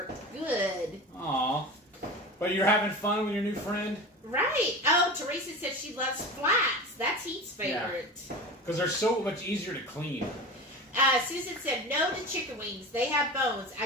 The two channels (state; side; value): normal; both; correlation 0.31